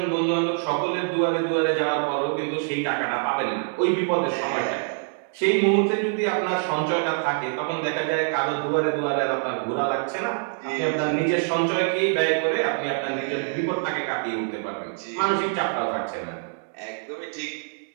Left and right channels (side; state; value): left; silent; 62 dB below the other